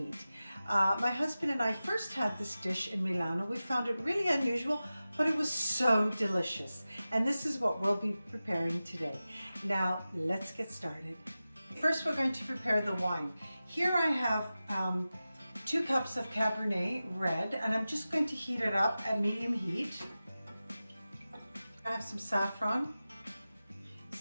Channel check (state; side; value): inverted; both; correlation -0.95